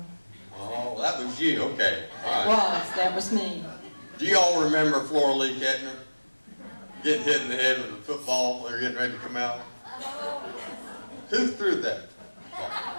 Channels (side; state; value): both; inverted; correlation -1.00